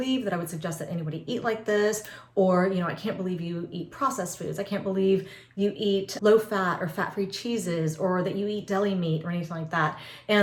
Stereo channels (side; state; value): both; identical; correlation 1.00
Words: that I would suggest that anybody eat like this, or, I can't believe you eat processed foods. I can't believe you eat low fat or fat-free cheeses, or that you eat deli meat or anything like that.